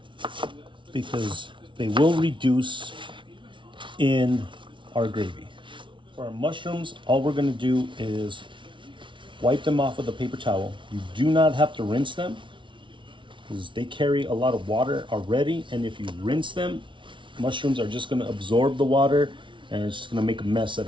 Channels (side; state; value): left; late; 0.24 ms